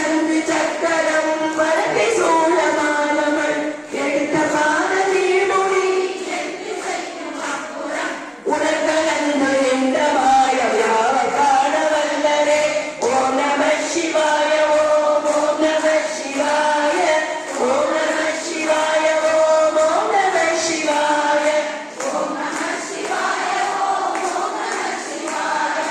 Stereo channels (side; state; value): both; identical; correlation 1.00